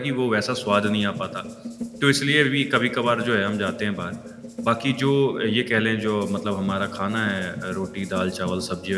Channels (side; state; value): both; identical; correlation 1.00